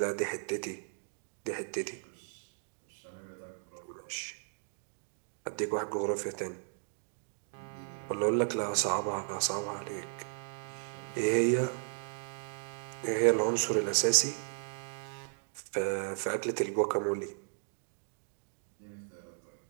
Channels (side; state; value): left; silent; digital silence